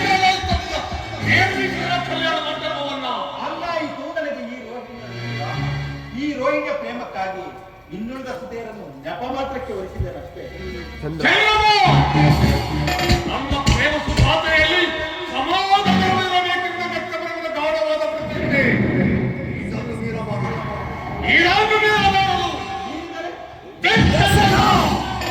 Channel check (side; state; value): both; identical; correlation 1.00